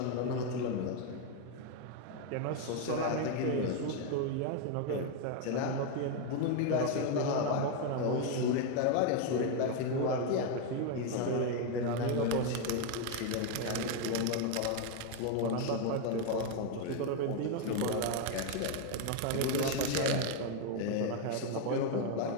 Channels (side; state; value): both; different; correlation 0.01